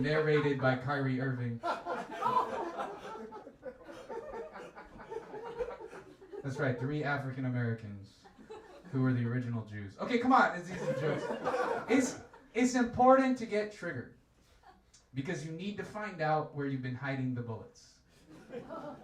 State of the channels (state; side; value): identical; both; correlation 1.00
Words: by Kyrie Irving. That's right, 3 African Americans who were the original Jews. Okay, come on, it's easy jokes. It's important to get triggered because you need to find out where you've been hiding the bullets.